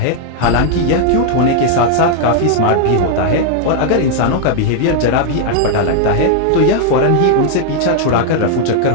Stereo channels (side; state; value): both; different; correlation 0.00